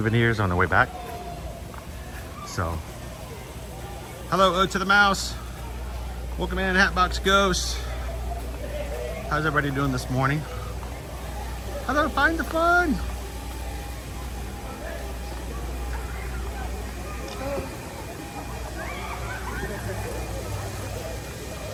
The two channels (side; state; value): both; identical; correlation 1.00